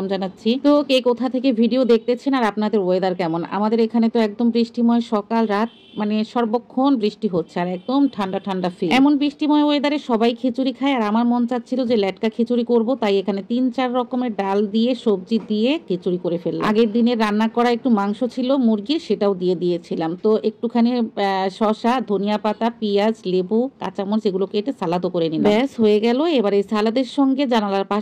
জানাচ্ছি। তো কে কোথা থেকে ভিডিও দেখতেছেন আর আপনাদের ওয়েদার কেমন? আমাদের এখানে তো একদম বৃষ্টিময় সকাল রাত, মানে সর্বক্ষণ বৃষ্টি হচ্ছে আর একদম ঠান্ডা ঠান্ডা ফিল। এমন বৃষ্টিময় ওয়েদারে সবাই খিচুড়ি খায় আর আমার মন চাচ্ছিল যে লেটকা খিচুড়ি করব, তাই এখানে 3-4 রকমের ডাল দিয়ে সবজি দিয়ে খিচুড়ি করে ফেললাম। আগের দিনে রান্না করা একটু মাংস ছিল মুরগির, সেটাও দিয়ে দিয়েছিলাম। তো একটুখানি শসা, ধনিয়া পাতা, পেঁয়াজ, লেবু, কাঁচামরিচ এগুলো কেটে সালাদও করে নিলাম। ব্যাস হয়ে গেল। এবার এই সালাদের সঙ্গে জানালার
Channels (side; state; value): both; identical; correlation 1.00